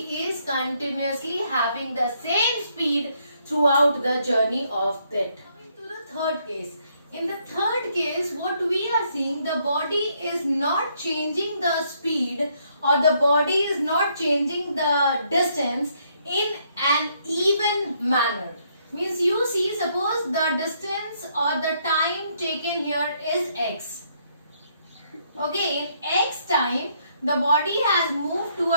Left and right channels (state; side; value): inverted; both; correlation -0.71